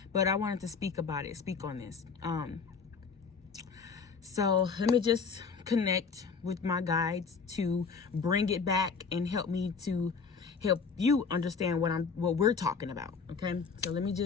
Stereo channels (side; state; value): right; quieter; 5.4 dB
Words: But I wanted to speak on this. So let me just connect with my guides to bring it back and help me to help you understand what we're talking about. Okay, so give me